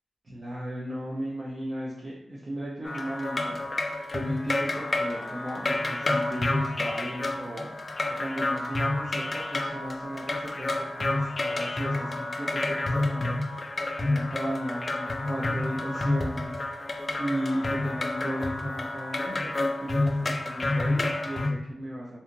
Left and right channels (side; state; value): both; normal; correlation 0.96